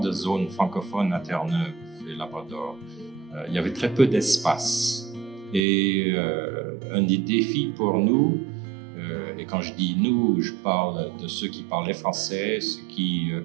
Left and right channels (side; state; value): left; drops out; at 5.6 s